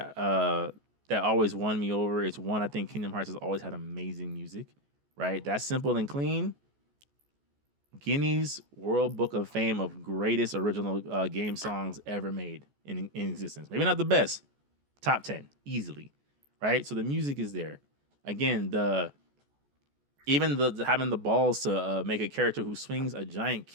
that always won me over. It's one, I think Kingdom Hearts has always had amazing music, right? That's simple and clean. Guinness World Book of Fame of greatest original game songs ever made in existence. Maybe not the best, top 10 easily, right? So the music is there. Again, having the balls to make a character who swings a giant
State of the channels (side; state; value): left; late; 14 ms